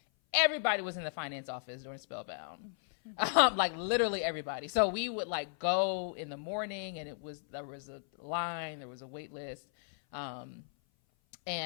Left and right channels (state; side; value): silent; right; 54 dB below the other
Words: everybody was in the finance office during Spellbound. Like literally everybody. So we would like go in the morning, and there was a line, there was a wait list.